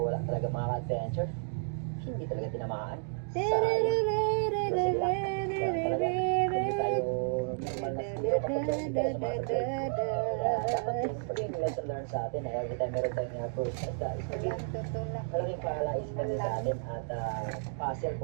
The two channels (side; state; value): left; silent; digital silence